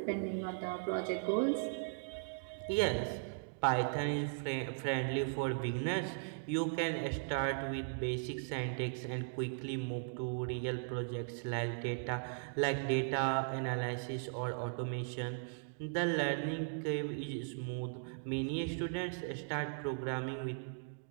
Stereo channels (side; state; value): left; silent; digital silence